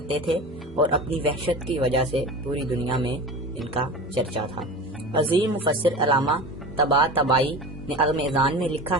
تھے اور اپنی وحشت کی وجہ سے پوری دنیا میں ان کا چرچا تھا۔ عظیم مفسر علامہ طباطبائی نے عظم اذان میں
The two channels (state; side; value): normal; both; correlation 0.32